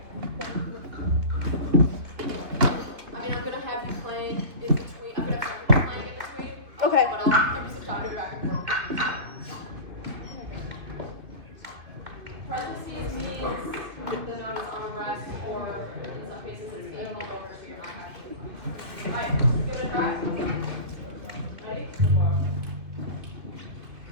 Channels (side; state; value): left; late; 2.5 ms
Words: I mean, I'm going to have you playing in between. I'm going to have you playing in between. Okay. But I'll give you some time to go back and forth. Parentheses means the note is on a rest, or in some cases it's being held over, so you're not actually. Alright, give it a try. Ready?